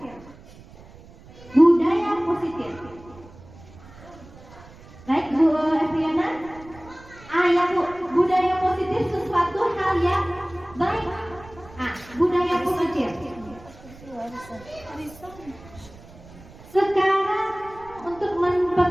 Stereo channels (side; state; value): right; noise; rumble, 20 dB below the sound